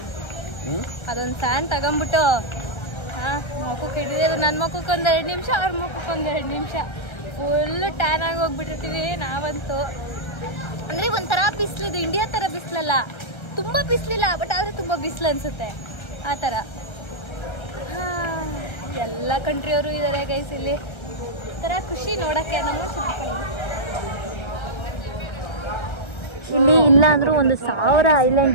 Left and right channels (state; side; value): late; right; 1.3 ms